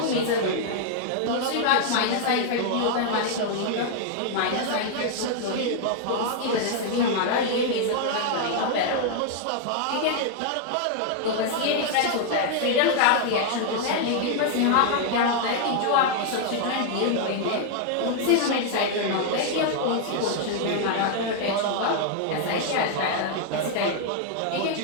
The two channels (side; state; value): both; different; correlation 0.00